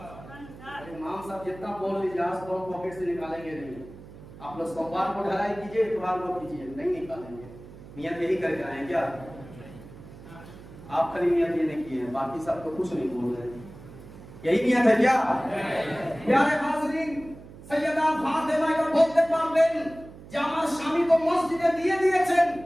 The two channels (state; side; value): noise; right; hum, 17 dB below the sound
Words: इमाम साहब जितना बोल लीजिए, आज तो पॉकेट से निकालेंगे नहीं। आप लोग सोमवार को ढलाई कीजिए, इतवार को कीजिए, नहीं निकालेंगे। नियत यही करके आए क्या? आप खाली नियत ये नहीं किए, बाकी सब तो कुछ नहीं बोल रहे। यही नियत है क्या? प्यारे हाज़रीन, सैयदा फातिमा को बोलते পারবেন যে আমার স্বামী তো মসজিদে দিয়ে দিয়েছেন,